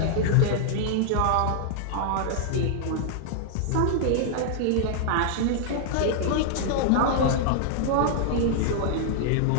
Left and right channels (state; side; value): different; both; correlation -0.01